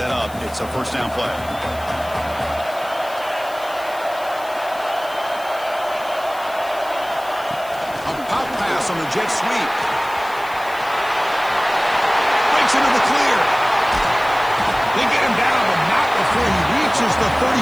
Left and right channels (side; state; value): left; noise; hiss, 20 dB below the sound